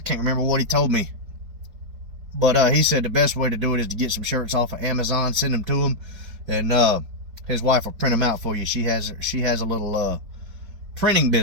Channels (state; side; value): late; left; 4.8 ms